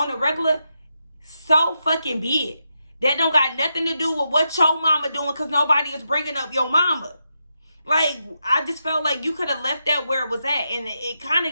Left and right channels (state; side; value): inverted; both; correlation -0.85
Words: a regular, so fucking be it. That don't got nothing to do with what your mama doing, because nobody is bringing up your mama. Like, I just felt like you could have left that where it was at. And it kind